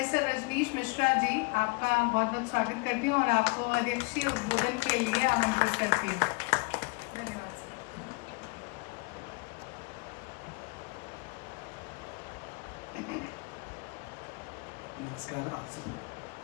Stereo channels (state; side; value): quieter; right; 29.7 dB